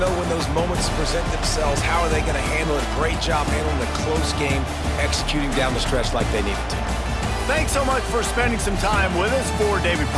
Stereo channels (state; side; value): identical; both; correlation 1.00